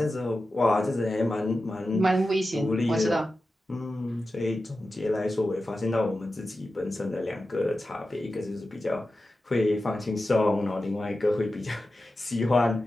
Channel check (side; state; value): both; normal; correlation 0.93